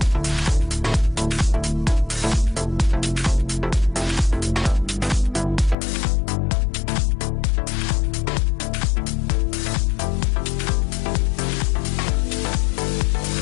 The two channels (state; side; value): drops out; right; at 5.8 s